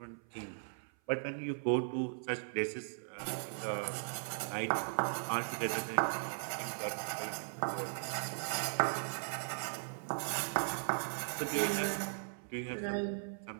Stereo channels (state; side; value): silent; left; 52 dB below the other